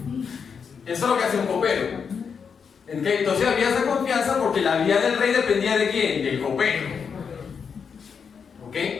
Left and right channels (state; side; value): quieter; right; 6.3 dB